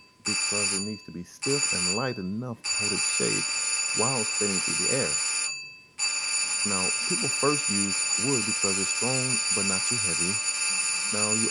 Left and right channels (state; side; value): identical; both; correlation 1.00